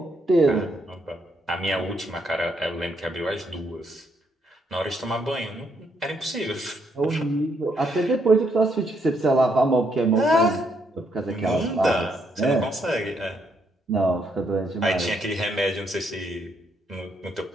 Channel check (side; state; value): both; normal; correlation 0.74